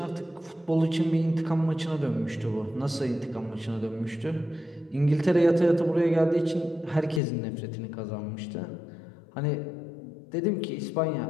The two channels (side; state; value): right; drops out; at 7.2 s